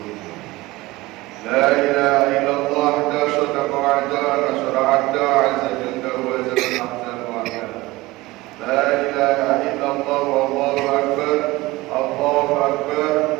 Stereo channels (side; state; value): left; quieter; 20.1 dB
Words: La ilaha illallah da sadaqa wa'da nasra 'abda 'azza jalla wa zalla ahsan wa'da. La ilaha illallah wallahu akbar, Allahu akbar,